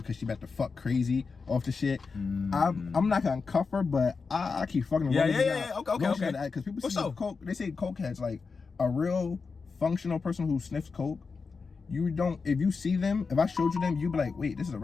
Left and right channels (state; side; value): quieter; right; 4.8 dB